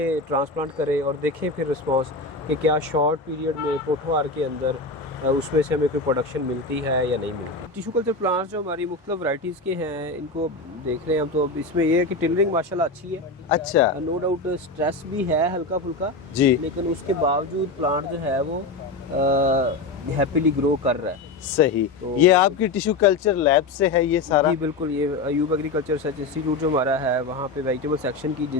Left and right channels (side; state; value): right; quieter; 3.4 dB